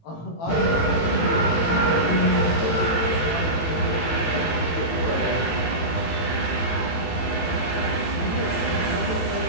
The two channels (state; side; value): late; right; 18 ms